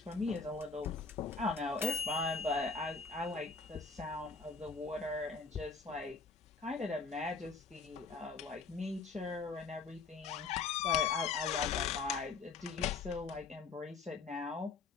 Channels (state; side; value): quieter; right; 4.6 dB